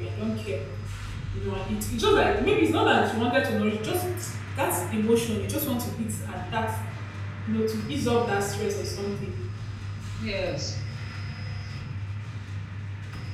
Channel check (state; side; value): identical; both; correlation 1.00